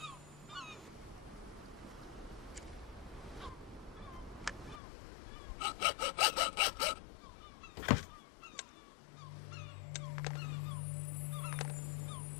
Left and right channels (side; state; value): right; drops out; at 4.8 s